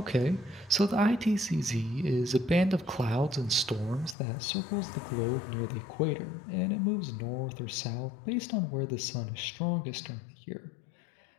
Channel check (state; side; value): drops out; right; at 4.2 s